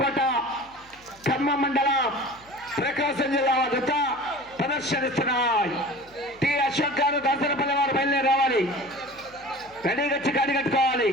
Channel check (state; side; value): noise; left; hum, 27 dB below the sound